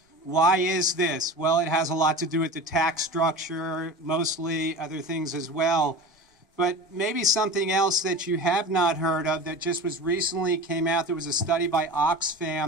Why is this? Well, it has a lot to do with the tax structure, mostly other things as well. But maybe something else that you have not heard of that just was recently came out. There was a study by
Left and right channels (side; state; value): both; normal; correlation 0.33